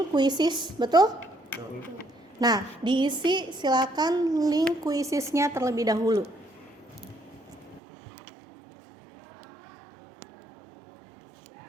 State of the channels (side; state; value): left; drops out; at 7.8 s